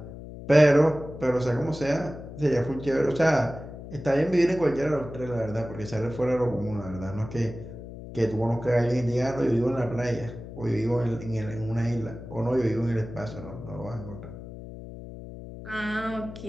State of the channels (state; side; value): noise; left; hum, 12 dB below the sound